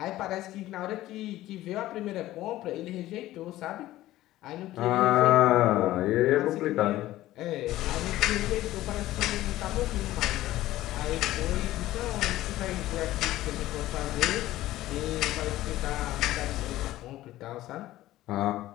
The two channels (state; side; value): quieter; right; 15.4 dB